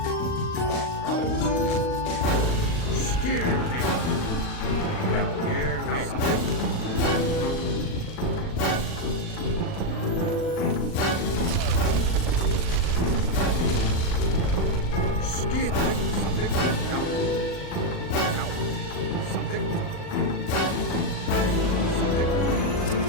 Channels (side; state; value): right; late; 39 ms